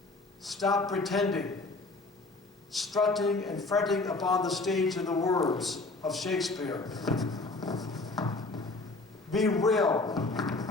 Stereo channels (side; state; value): right; quieter; 3.3 dB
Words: Stop pretending, strutting and fretting upon the stage, in the words of Shakespeare. Be real